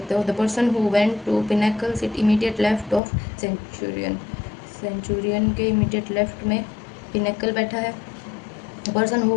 हो। The person who went to Pinnacle sit immediate left of Centurion. Centurion के इमीडिएट लेफ्ट में पिनेकल बैठा है। The person who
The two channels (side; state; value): right; drops out; at 3.0 s